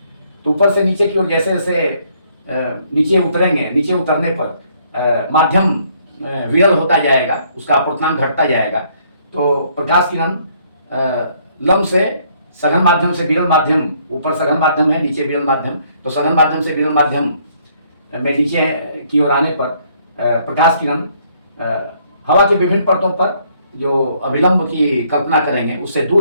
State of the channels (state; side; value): inverted; both; correlation -0.66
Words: तो ऊपर से नीचे की ओर जैसे जैसे नीचे उतरेंगे, नीचे उतरने पर माध्यम विरल होता जाएगा, उसका अपर्तांक घटता जाएगा। तो प्रकाश किरण लंब से सघन माध्यम से विरल माध्यम, ऊपर सघन माध्यम है, नीचे विरल माध्यम, तो सघन माध्यम से विरल माध्यम में नीचे की ओर आने पर प्रकाश किरण हवा की विभिन्न परतों पर जो अभिलंब की कल्पना करेंगे उससे